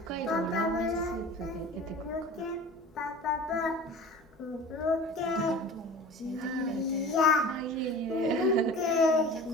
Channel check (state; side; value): normal; both; correlation 0.39